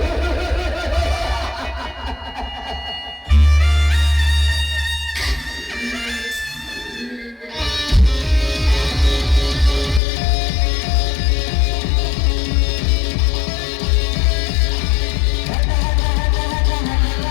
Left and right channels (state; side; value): drops out; right; at 10.0 s